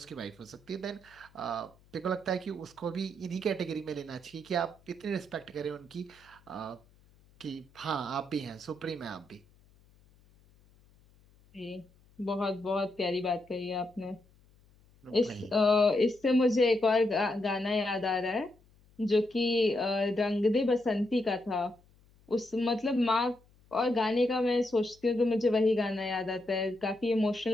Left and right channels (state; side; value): noise; left; hum, 30 dB below the sound